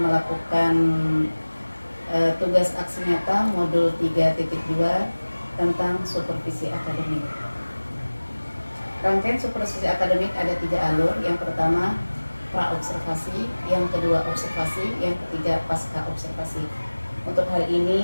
melakukan tugas aksi nyata modul 3.2 tentang supervisi akademik. Rangkaian supervisi akademik ada 3 alur. Yang pertama pra-observasi, yang kedua observasi, yang ketiga pasca observasi. Untuk hari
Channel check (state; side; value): inverted; both; correlation -1.00